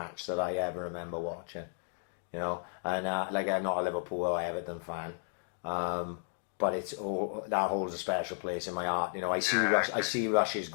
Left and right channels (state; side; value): silent; right; digital silence